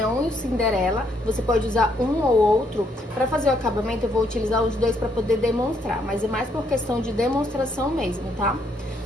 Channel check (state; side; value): normal; both; correlation 0.72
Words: e o Cinderela. Você pode usar um ou outro. Para fazer o acabamento eu vou utilizar os dois para poder demonstrar, mas é mais por questão de demonstração mesmo, tá?